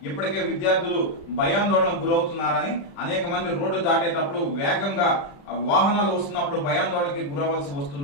ఇప్పటికే విద్యార్థులు భయాందోళనకు గురవుతున్నారని, అనేక మంది రోడ్డు దాటేటప్పుడు వేగంగా వాహనాలు వస్తున్నప్పుడు భయాందోళనకి గురవలసి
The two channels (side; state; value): right; late; 35 ms